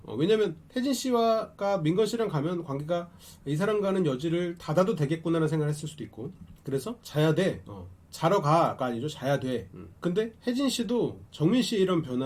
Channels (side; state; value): both; identical; correlation 1.00